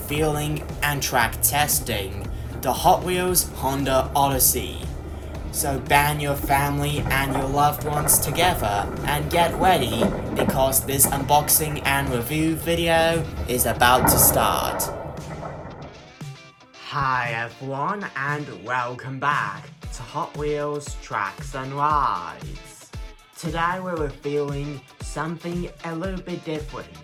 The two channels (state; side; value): identical; both; correlation 1.00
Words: and track testing the Hot Wheels Honda Odyssey. So band your family and your loved ones together and get ready because this unboxing and review video is about to start. Hi everyone and welcome back to Hot Wheels Tracks and Rides. Today we're revealing something a little bit different.